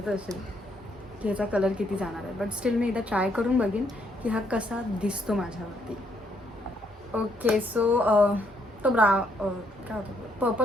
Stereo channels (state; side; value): normal; both; correlation 0.72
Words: असेल की याचा कलर किती जाणार आहे. बट स्टील मी एकदा ट्राय करून बघीन की हा कसा दिसतो माझ्यावरती. ओके सो तो काय होतं